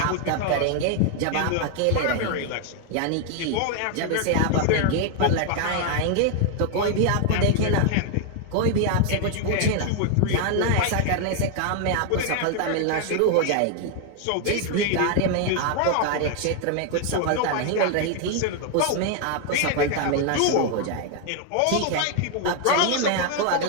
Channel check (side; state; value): both; different; correlation 0.00